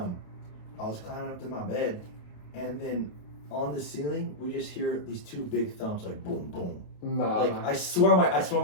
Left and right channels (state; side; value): late; right; 28 ms